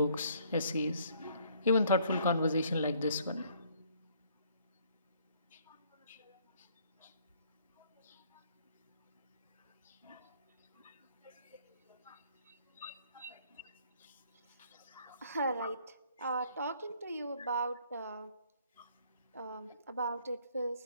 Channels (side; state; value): both; inverted; correlation -0.63